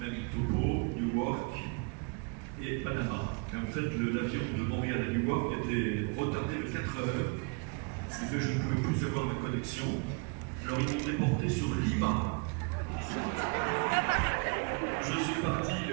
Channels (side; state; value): left; quieter; 33.1 dB